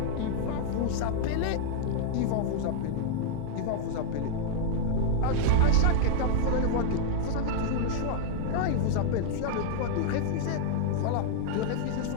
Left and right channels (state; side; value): different; both; correlation -0.01